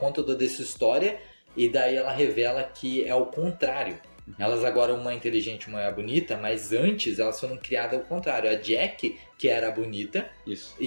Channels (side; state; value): both; inverted; correlation -1.00